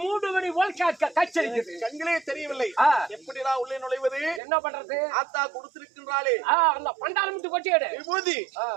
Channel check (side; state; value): left; drops out; at 4.4 s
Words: மூடு மணி போல் கச்சரிக்கிறது. கண்களே தெரியவில்லை. எப்படிதான் உள்ளே நுழைவது? என்ன பண்றது? ஆத்தா கொடுத்திருக்கின்றாளே அந்த பண்டாரமுத்து கொட்டியடு விபூதி.